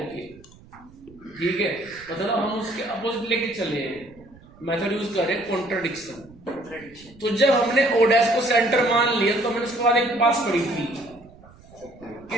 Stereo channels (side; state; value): right; noise; rumble, 24 dB below the sound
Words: के। ठीक है, मतलब हम उसके अपोजिट लेके चले हैं, मेथड यूज करें कॉन्ट्रडिक्शन। तो जब हमने ओ डैश को सेंटर मान लिया तो हमने उसके बाद एक बात पढ़ी थी कि